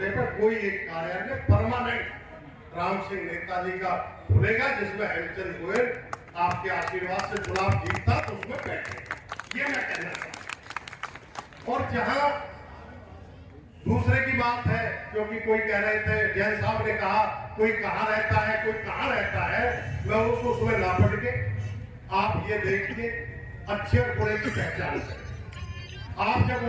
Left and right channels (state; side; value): identical; both; correlation 1.00